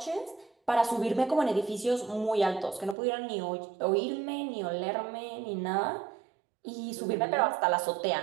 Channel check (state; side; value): drops out; left; at 3.0 s